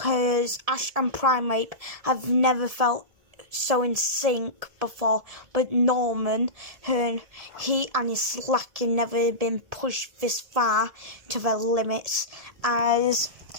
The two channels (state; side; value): late; left; 1.7 ms